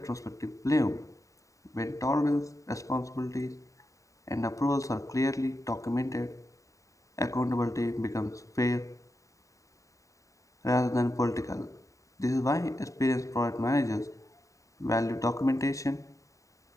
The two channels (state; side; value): late; right; 0.16 ms